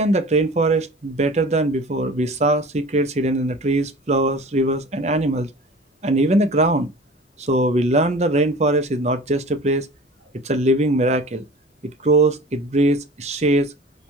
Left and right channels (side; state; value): both; normal; correlation 0.40